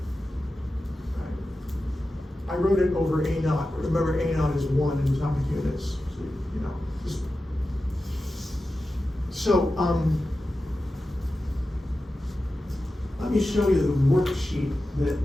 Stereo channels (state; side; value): normal; both; correlation 0.93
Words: Right? I wrote it over A0. Remember, A0 is 1 in atomic units. So, let me show you the worksheet that